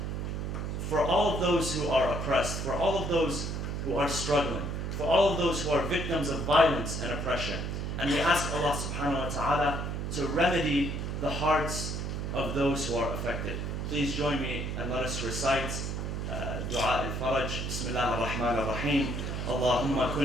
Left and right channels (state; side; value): noise; right; hum, 3 dB below the sound